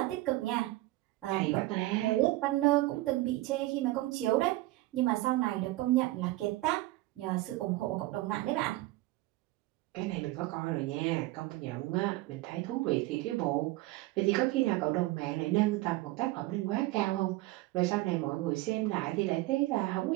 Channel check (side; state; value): left; quieter; 18.5 dB